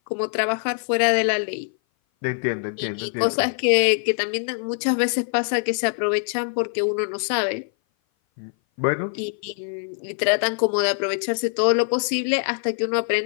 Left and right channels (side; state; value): right; silent; 57 dB below the other